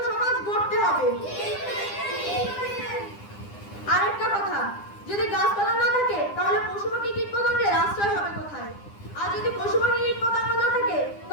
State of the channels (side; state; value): right; late; 9.9 ms